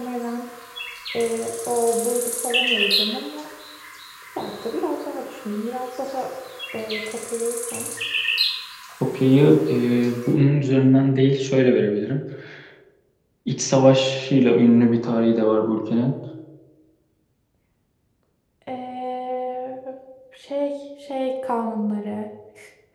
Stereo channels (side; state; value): both; identical; correlation 1.00